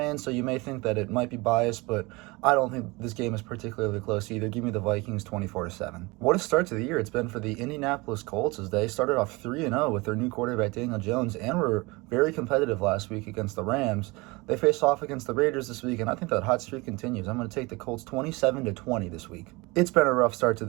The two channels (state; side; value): quieter; left; 24.5 dB